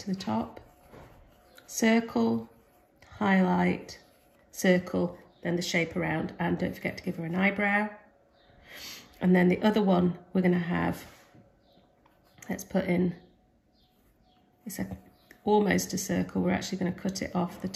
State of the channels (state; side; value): identical; both; correlation 1.00